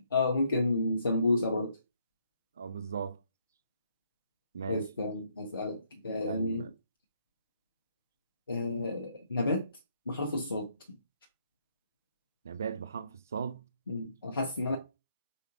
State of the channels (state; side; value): inverted; both; correlation -0.71